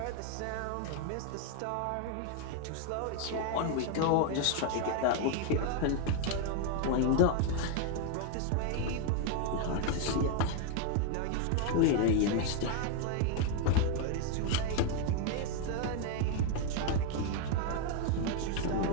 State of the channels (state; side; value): different; both; correlation 0.00